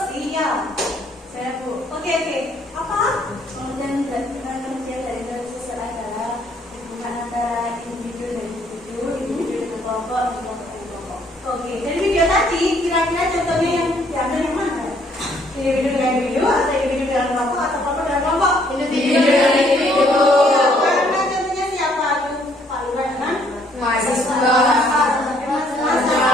Saya Bu. Oke. Apa? Pengertian dari interaksi sosial adalah hubungan antara individu dan individu dengan kelompok, dan kelompok dengan kelompok. Oke, dari video tadi kira-kira contohnya yang diambil yang mana? Individu dengan individu atau individu dengan kelompok atau kelompok dengan kelompok? Individu dengan individu. Ya, karena contohnya siapa? Aduh, Pak Lurah dengan Mahasiswa.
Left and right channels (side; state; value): both; normal; correlation 0.65